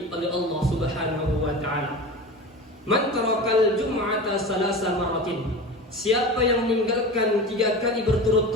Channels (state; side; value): normal; both; correlation 0.31